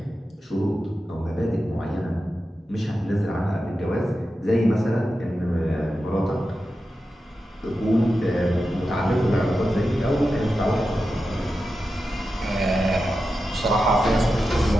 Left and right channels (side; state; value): both; normal; correlation 0.91